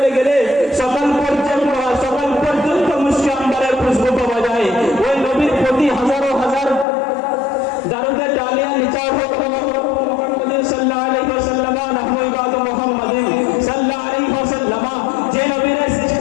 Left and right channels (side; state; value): right; drops out; at 6.9 s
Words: গেলে সকাল পর্যন্ত মুশকি আম্বারের খুশবু পাওয়া যায়, ওই নবীর প্রতি হাজারো হাজার দারুদের ডালিয়া নিচার হোক মুহাম্মদ সাল্লাল্লাহু আলাইহি ওয়াসাল্লাম নাহনু ইবাদু মুহাম্মাদিন সাল্লাল্লাহু আলাইহি ওয়াসাল্লাম। যে নবীর